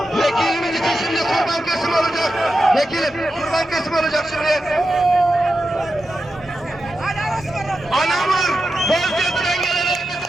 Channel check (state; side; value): normal; both; correlation 0.89